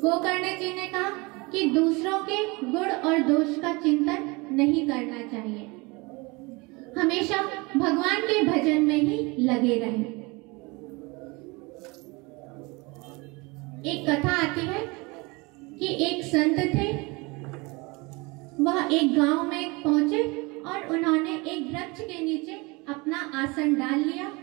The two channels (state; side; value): quieter; left; 26.2 dB